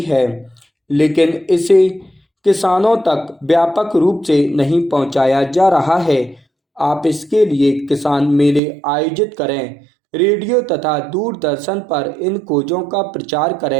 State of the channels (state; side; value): drops out; left; at 8.6 s